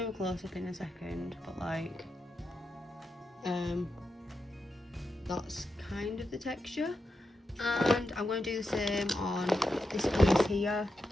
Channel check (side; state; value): both; normal; correlation 0.87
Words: a close-up in a second, but like, that's kind of the texture. And I'm going to do the same on this piece here,